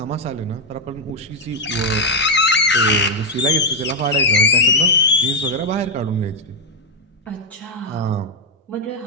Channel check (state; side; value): normal; both; correlation 0.01